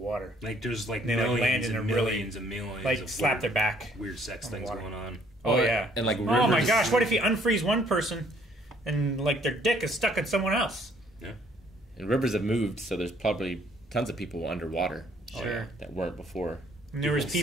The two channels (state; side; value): normal; both; correlation 0.62